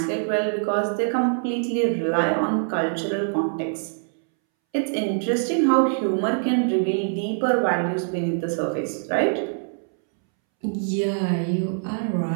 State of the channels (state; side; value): silent; left; 63 dB below the other